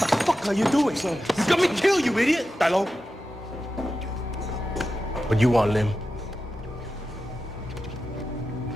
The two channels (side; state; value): both; normal; correlation 0.91